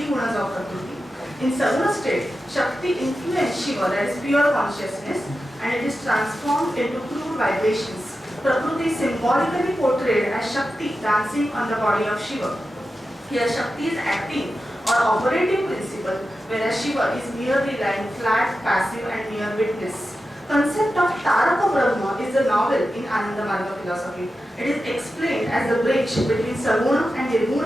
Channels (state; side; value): normal; both; correlation 0.92